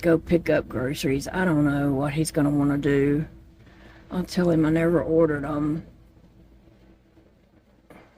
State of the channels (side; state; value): both; identical; correlation 1.00